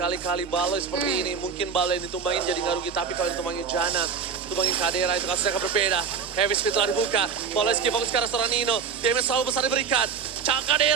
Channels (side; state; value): left; quieter; 6.2 dB